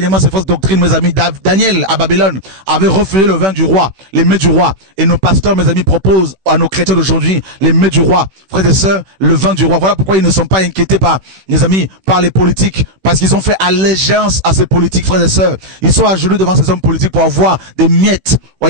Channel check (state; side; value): late; left; 16 ms